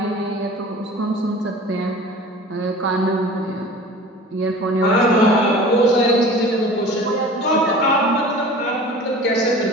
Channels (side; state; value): both; normal; correlation 0.41